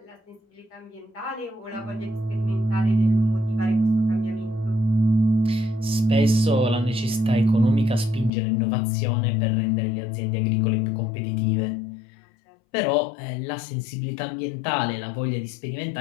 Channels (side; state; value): right; drops out; at 8.3 s